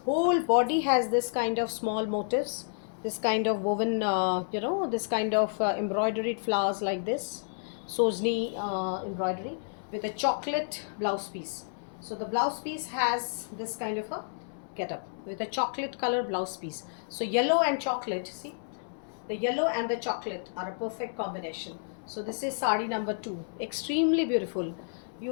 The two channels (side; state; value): right; silent; 58 dB below the other